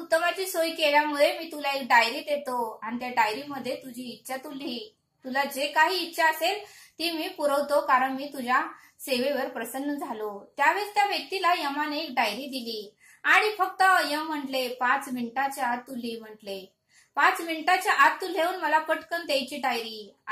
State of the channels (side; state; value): both; identical; correlation 1.00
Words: सोय केल्यामुळे मी तुला एक डायरी देतो आणि त्या डायरीमध्ये तुझी इच्छा तू लिही, तुला जे काही इच्छा असेल ती मी पुरवतो कारण मी तुझ्या सेवेवर प्रसन्न झालो। त्यावेळेस त्या व्यक्तीला यमाने एक डायरी दिली आणि फक्त यम म्हटले 5 मिनिटाच्या आत तू लिही म्हटले, 5 मिनिटाच्या आत तू लिहून मला पटकन द्यायची डायरी।